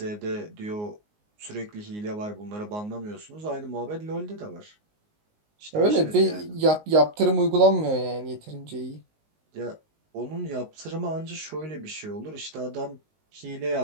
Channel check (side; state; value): left; late; 19 ms